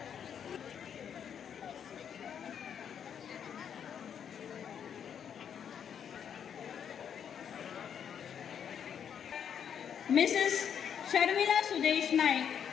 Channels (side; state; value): right; quieter; 8.2 dB